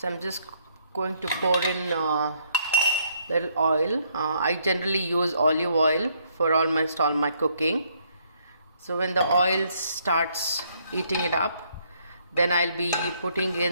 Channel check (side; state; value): both; inverted; correlation -0.69